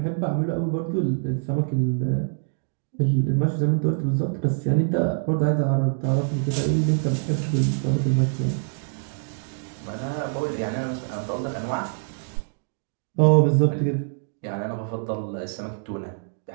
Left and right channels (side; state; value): left; silent; digital silence